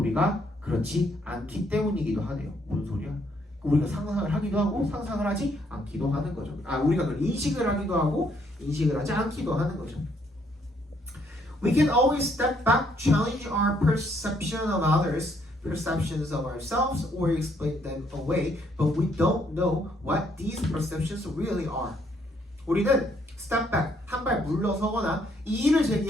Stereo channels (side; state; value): both; normal; correlation 0.70